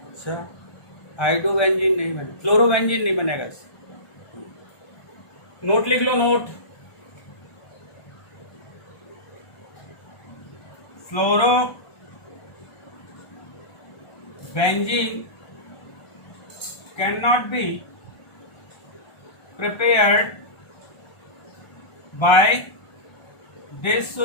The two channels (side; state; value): right; late; 1.3 ms